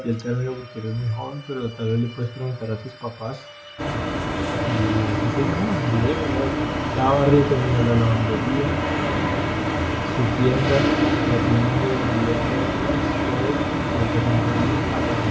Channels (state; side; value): identical; both; correlation 1.00